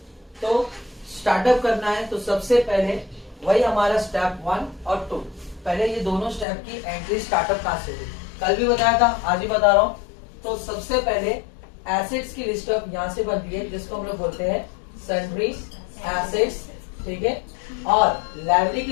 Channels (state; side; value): drops out; right; at 6.5 s